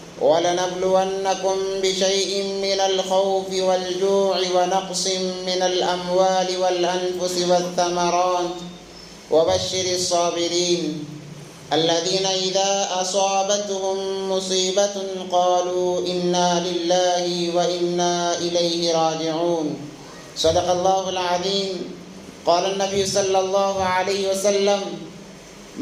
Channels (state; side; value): identical; both; correlation 1.00